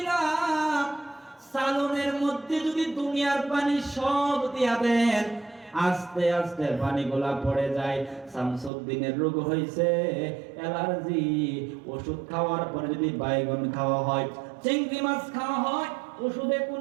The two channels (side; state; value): left; drops out; at 8.7 s